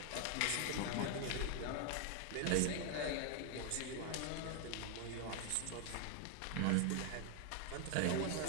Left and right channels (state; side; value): different; both; correlation 0.00